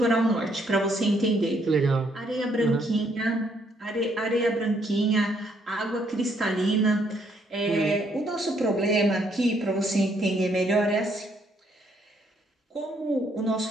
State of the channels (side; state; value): both; normal; correlation 0.70